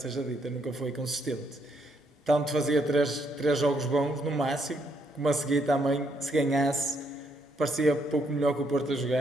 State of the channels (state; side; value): normal; both; correlation 0.74